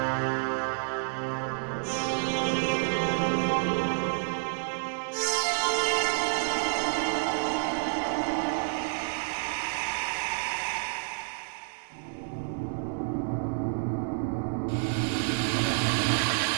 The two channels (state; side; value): silent; left; 58 dB below the other